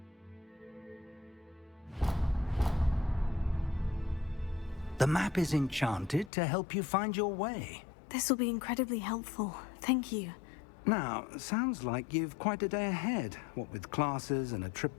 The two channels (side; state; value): right; drops out; at 6.3 s